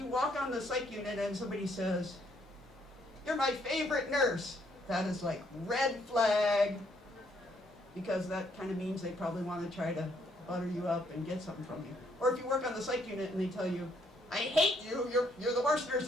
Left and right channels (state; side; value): normal; both; correlation 0.70